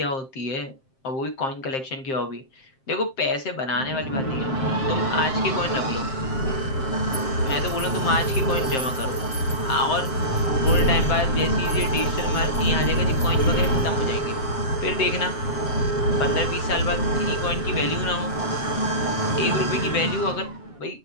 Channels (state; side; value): late; right; 7.6 ms